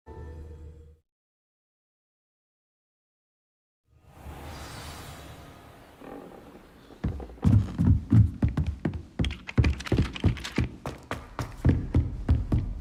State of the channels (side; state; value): both; identical; correlation 1.00